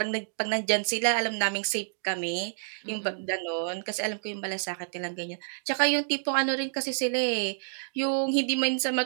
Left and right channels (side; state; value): left; silent; digital silence